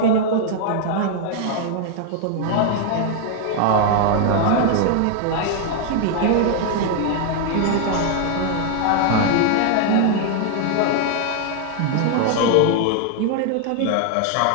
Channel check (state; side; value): different; both; correlation 0.00